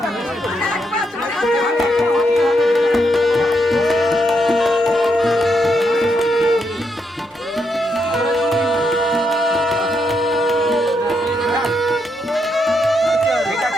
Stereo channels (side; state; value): both; normal; correlation 0.79